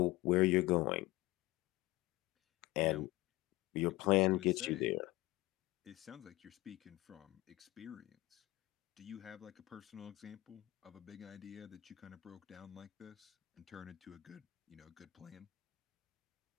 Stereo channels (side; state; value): right; quieter; 18.9 dB